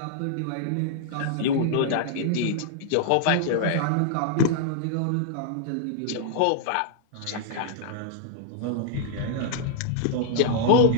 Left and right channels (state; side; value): different; both; correlation -0.01